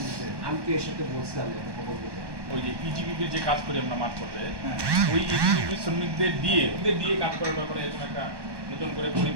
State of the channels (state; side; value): late; left; 1.2 ms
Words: আমি তো এর সাথে বলছিলাম ওই যে ইজিবিপির যে কাজ করি আমরা মাঠ পর্যায়ে ওই ইজিবিপি শ্রমিকদের দিয়ে কাজ করার ব্যাপারে এরকম একটা নতুন করে